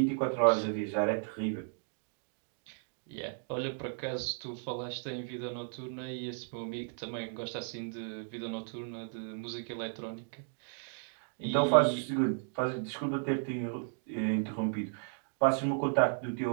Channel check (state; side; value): silent; left; digital silence